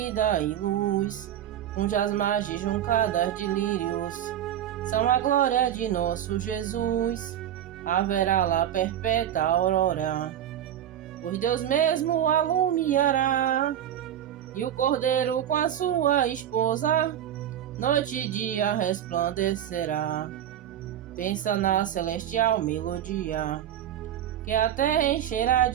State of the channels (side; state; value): left; quieter; 10.6 dB